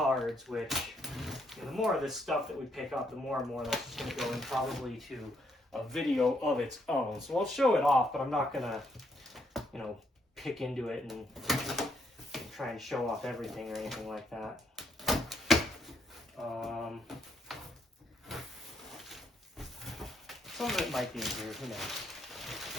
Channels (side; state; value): both; normal; correlation 0.73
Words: which, you know, the more of this stuff that we pick up, the more and more that's just going to go in probably to a video of its own. So I'll show it off, but I'm not going to, you know, pick into it and try and show off everything or anything like that. Some of it might be in here, who knows.